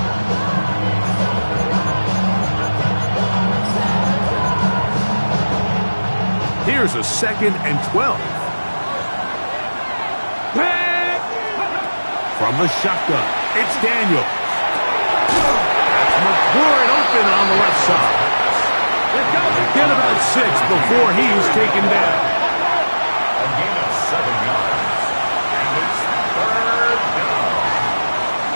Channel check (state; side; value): inverted; both; correlation -1.00